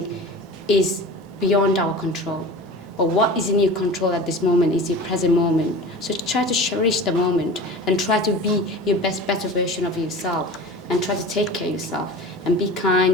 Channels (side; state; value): both; normal; correlation 0.36